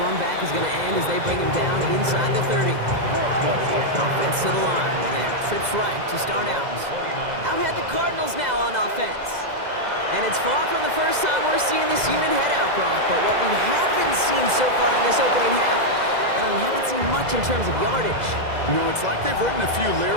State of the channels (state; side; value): late; left; 2.0 ms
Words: back is going to end as they bring him down inside the 30. Offense to the line. And trips right to start out. Out had the Cardinals now on offense. And it's far from the first time we're seeing this unit head out, Brock. But what we haven't seen so far in this opening half, we haven't seen much in terms of yardage. No, it's like they've written a few